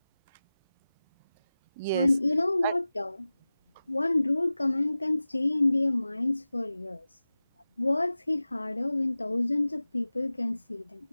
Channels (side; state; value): both; inverted; correlation -0.96